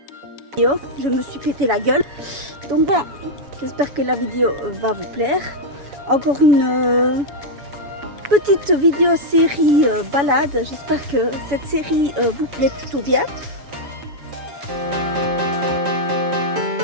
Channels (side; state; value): left; late; 7.1 ms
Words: Je me suis pété la gueule. Donc voilà, j'espère que la vidéo va vous plaire. Encore une petite vidéo série balade. J'espère que cette série vous plaît plutôt bien.